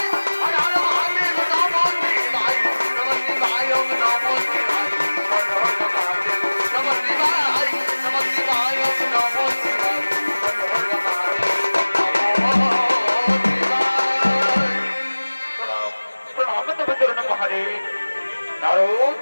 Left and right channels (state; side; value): inverted; both; correlation -1.00